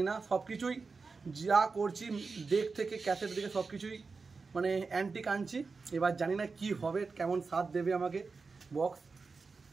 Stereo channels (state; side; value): quieter; left; 4.5 dB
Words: না। সব কিছুই যা করছি ডেক থেকে ক্যাসেট থেকে সব কিছুই মানে অ্যান্টিক আনছি। এবার জানি না কি হবে, কেমন স্বাদ দেবে আমাকে বক্স,